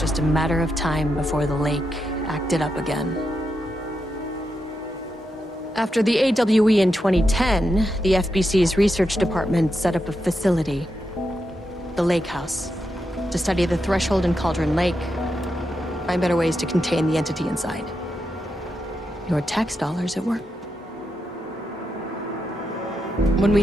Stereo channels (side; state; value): both; normal; correlation 0.85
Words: just a matter of time before the lake acted up again. After the AWE in 2010, the FBC's research department set up a facility, the Lake House, to study the threshold in Cauldron Lake, find better ways to contain the entity inside. Your tax dollars at work. When we